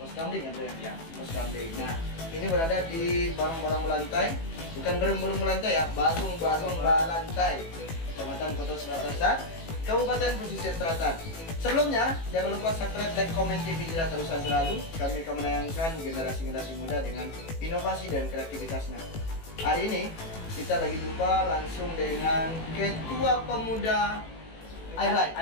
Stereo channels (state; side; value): late; right; 18 ms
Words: Kamling ya bro ya? Pos Kamling. Nah, ini berada di barang-barang melantai. Bukan burung-burung melantai ya, barung-barung melantai. Kecamatan Kota Selatan, Kabupaten Pesisir Selatan. Sebelumnya, jangan lupa subscribe, like, komen TV Hijrah terusan selalu. Kami akan menayangkan generasi-generasi muda dengan inovasi dan kreativitasnya. Hari ini kita lagi jumpa langsung dengan Ketua Pemuda Ireland.